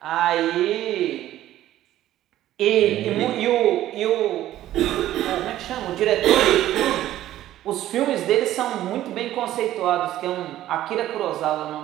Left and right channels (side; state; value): left; quieter; 13.5 dB